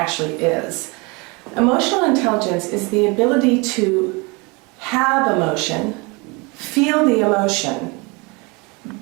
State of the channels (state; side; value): quieter; left; 28.2 dB